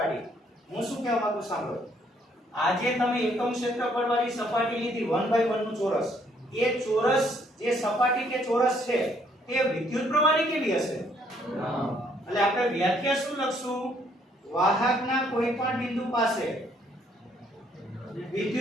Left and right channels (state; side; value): normal; both; correlation 0.67